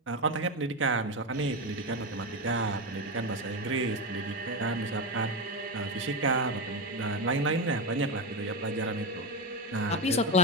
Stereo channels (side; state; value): both; normal; correlation 0.13